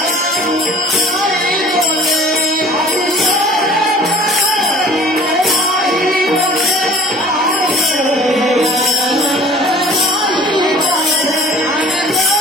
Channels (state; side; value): normal; both; correlation 0.48